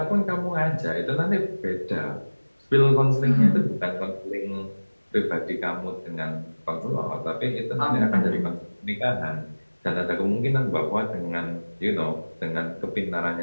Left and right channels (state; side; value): inverted; both; correlation -1.00